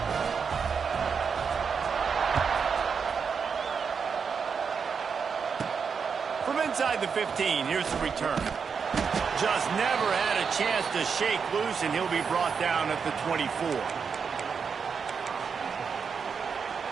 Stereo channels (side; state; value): left; quieter; 6.0 dB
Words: From inside the 15, here's the return. Just never had a chance to shake loose, and he'll be brought down at the 24.